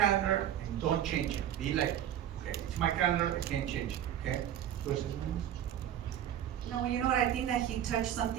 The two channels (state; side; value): quieter; left; 10.8 dB